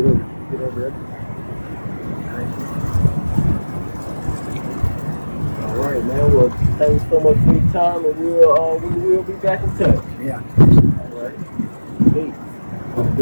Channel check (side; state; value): both; inverted; correlation -1.00